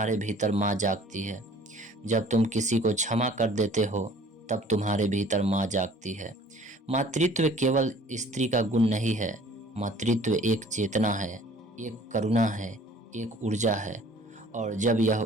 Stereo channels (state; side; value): normal; both; correlation 0.52